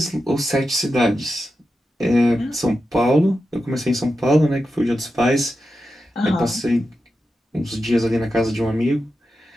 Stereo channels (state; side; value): normal; both; correlation 0.90